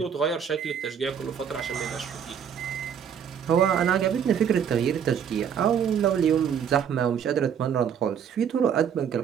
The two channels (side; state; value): left; quieter; 8.0 dB